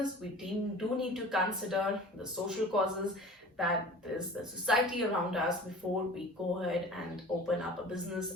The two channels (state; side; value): normal; both; correlation 0.41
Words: we do need to consider the social causes, that is the society around us, before we go ahead and open up a business